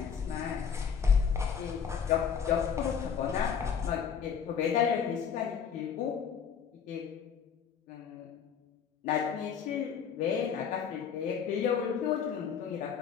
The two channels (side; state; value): right; quieter; 7.2 dB